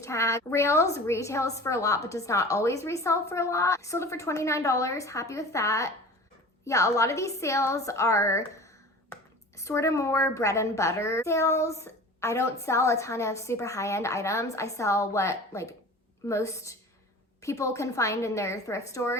tag. Rails retails for a lot but does not always resell for a lot. Sold it for $29. Happy with that. Yeah, a lot of these sales are sort of more bread and butter sales. I don't sell a ton of super high-end items. I sell what like most people can find in their thrift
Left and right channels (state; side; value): normal; both; correlation 0.39